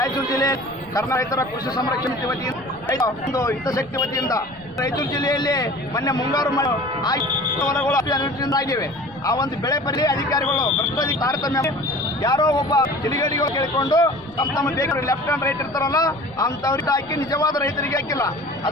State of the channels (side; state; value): left; noise; rumble, 26 dB below the sound